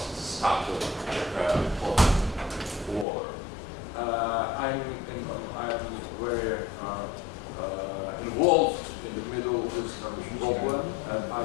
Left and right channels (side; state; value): right; drops out; at 3.1 s